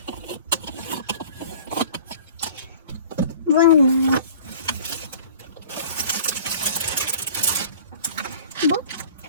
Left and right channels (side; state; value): both; inverted; correlation -0.46